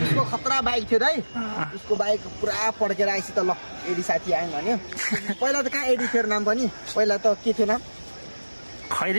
खतरा बाइक थियो दाइ। उसको बाइक पुरा पड्केर आएपछि त ल एडी साथी आयो भन्यो। पहिला त कहाँ एडी थियो नाम पनि? पहिला त के थियो नाम?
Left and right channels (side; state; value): both; inverted; correlation -1.00